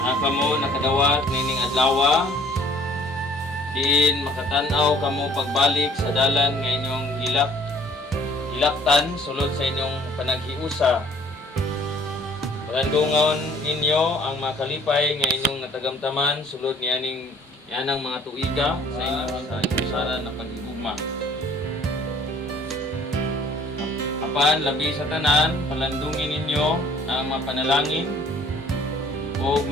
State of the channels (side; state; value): both; normal; correlation 0.55